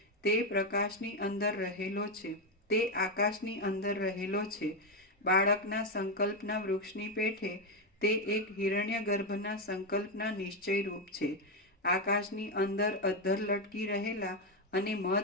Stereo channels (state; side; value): normal; both; correlation 0.07